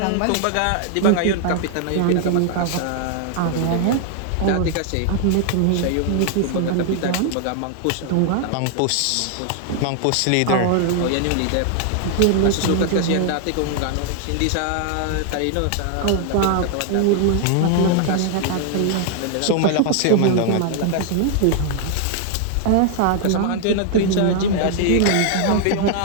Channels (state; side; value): different; both; correlation 0.00